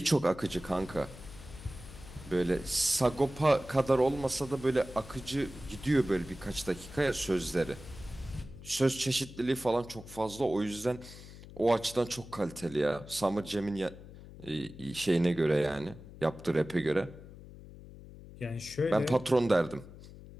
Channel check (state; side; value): noise; left; hum, 16 dB below the sound